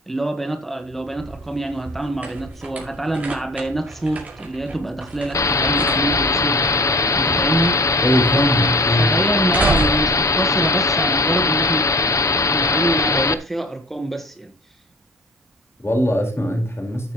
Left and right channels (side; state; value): both; normal; correlation 0.42